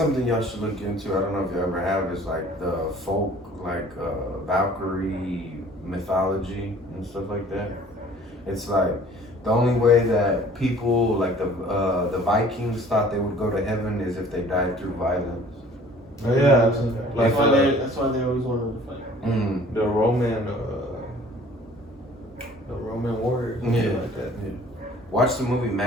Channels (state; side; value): normal; both; correlation 0.51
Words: y'all should look into. I don't know if you ever have. Is like the folk, like Valkyrie mythology and stuff like that. It's like the only way that people like the Vikings thought they would go to heaven is if they died through violence. Oh yeah, I've seen that. Like That's why they always wanted to fight. the Roman warriors and shit Yeah. like that. Watch the movie